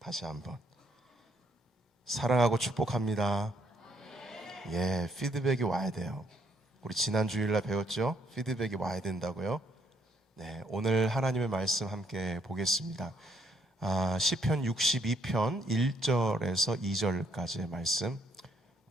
한번 사랑하고 축복합니다. 예, 피드백이 와야 돼요. 우리 지난 주일날 배웠죠? 피드백이 와야 된다고요. 네, 오늘 하나님의 말씀 함께 보겠습니다. 시편 62편 1절에서 2절까지의 말씀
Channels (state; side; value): normal; both; correlation 0.70